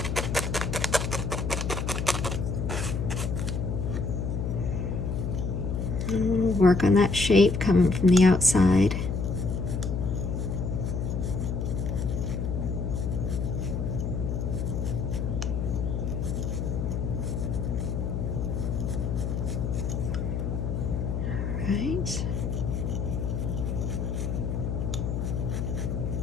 We'll work on that shape coming from the outside. All right.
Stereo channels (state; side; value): noise; left; hum, 1 dB below the sound